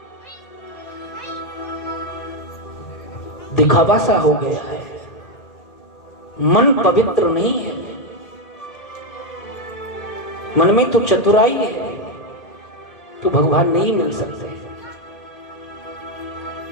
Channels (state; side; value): late; right; 1.7 ms